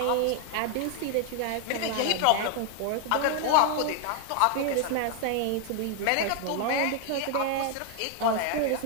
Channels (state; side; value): different; both; correlation 0.00